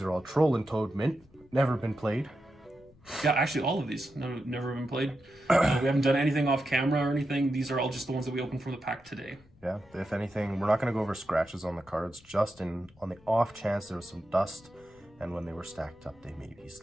are all Troll and Toad mint, never been played. yeah, actually all of these never been played. We haven't done anything off camera or anything. These are all just the ones that we opened from the pack today. Yeah, if anything, we're not going to go over scratches on the cards, just on the off chance there was some dust, and when they were stacked up, they maybe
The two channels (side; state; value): left; noise; rumble, 28 dB below the sound